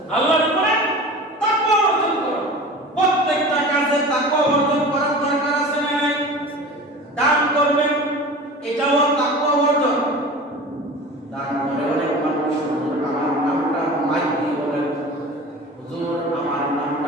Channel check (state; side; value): normal; both; correlation 0.36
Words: আল্লাহর উপরে তাকওয়া অর্জন করো। প্রত্যেকটা কাজে তাকওয়া অর্জন করার দরকার আছে না নাই? দান করবেন, এটাও তাকওয়া অর্জন। দান করে অনেক মানুষ হুজুর আমার নামটা মাইক দিয়ে বলেন, হুজুর আমার